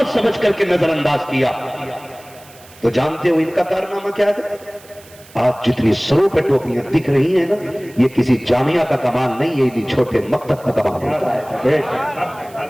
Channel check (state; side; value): noise; right; hiss, 24 dB below the sound